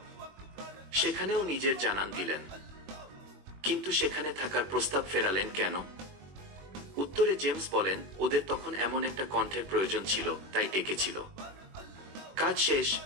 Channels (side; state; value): left; late; 21 ms